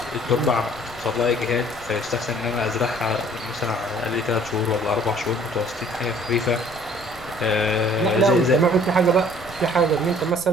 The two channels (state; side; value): noise; left; rumble, 21 dB below the sound